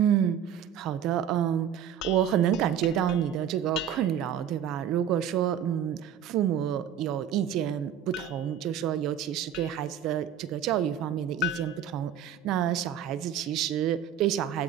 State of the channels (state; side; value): quieter; left; 8.9 dB